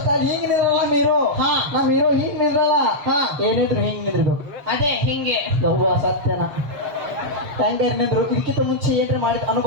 ಸ್ಟೈಲ್ ಹಿಂಗ್ ನಿಂದ್ರಲ್ಲ ಹೀರೋ. ಹಾ ನಮ್ ಹೀರೋ ಹಿಂಗ್ ನಿಂದ್ರಲ್ಲ. ಹಾ ಏನಿದ್ರು ಹಿಂಗ್ ನಿಂದ್ರಬೇಕು ಅದೇ ಹಿಂಗೆ ಯವ್ವ ಸತ್ಯನ ಹೆಂಗಾರ ನಿಂದ್ರು. ಇದಕ್ಕಿಂತ ಮುಂಚೆ ಏನ್ರಿ ಮಾಡಿದ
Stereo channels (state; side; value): late; left; 7.0 ms